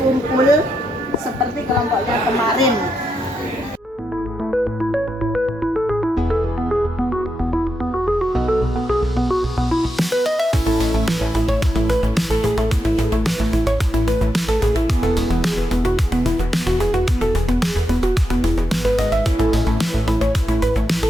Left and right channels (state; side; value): normal; both; correlation 0.86